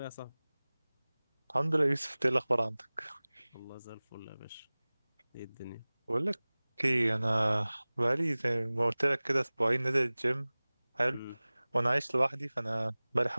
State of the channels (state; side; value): inverted; both; correlation -0.99